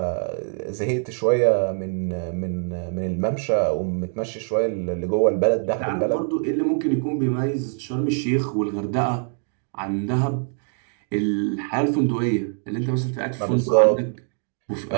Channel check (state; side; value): silent; left; 55 dB below the other